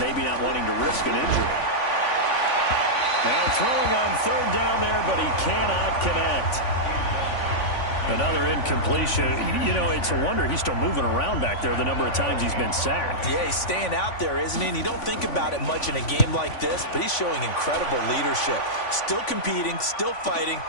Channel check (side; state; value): right; late; 3.5 ms